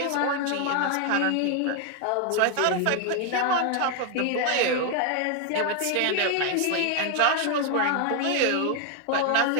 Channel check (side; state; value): both; different; correlation 0.01